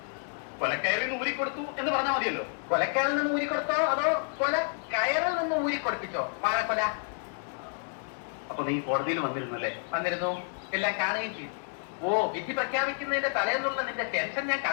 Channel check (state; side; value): silent; right; 58 dB below the other